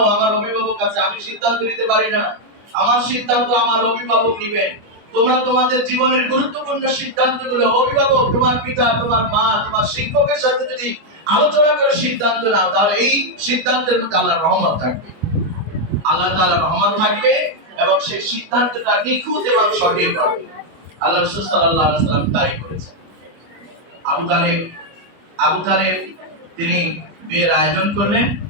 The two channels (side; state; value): left; late; 25 ms